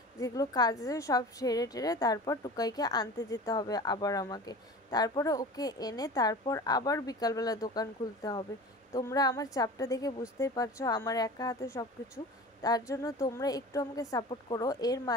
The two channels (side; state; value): both; normal; correlation 0.36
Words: যেগুলো কাজ আছে সব সেরে টেরে তারপর টুকাইকে আনতে যেতে হবে আবার আমাকে। তারপরে ওকে এনে তারপর আবার বিকালবেলা দোকান খুলতে হবে। তোমরা আমার চাপটা দেখে বুঝতেই পারছো, আমার একা হাতে সব কিছু। তার জন্য তোমরা একটু আমাকে সাপোর্ট করো। এর